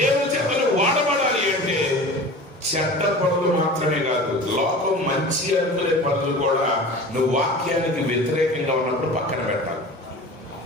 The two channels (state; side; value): normal; both; correlation 0.37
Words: చేతలు వాడబడాలి అంటే చెడ్డ పనులు మాత్రమే కాదు, లోకం మంచి అనుకునే పనులు కూడా నువ్వు వాక్యానికి వ్యతిరేకంగా ఉన్నప్పుడు పక్కన పెట్టాలి.